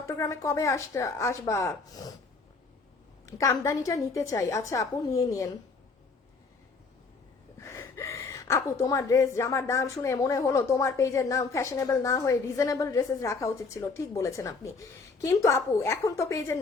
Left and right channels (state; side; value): quieter; right; 4.3 dB